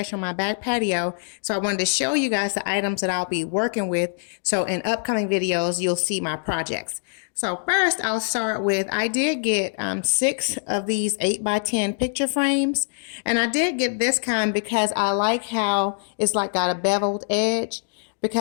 on my back patio. So I wanted to show you guys the items that I'll be working with. So in upcoming videos, you'll see my projects. So first I'll start with, I did get 6 of these 8x10 picture frames. And I did get this kind because I like how it's like got a beveled edge,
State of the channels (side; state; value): right; silent; digital silence